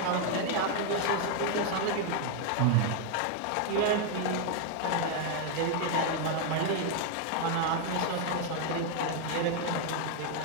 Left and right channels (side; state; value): both; different; correlation 0.00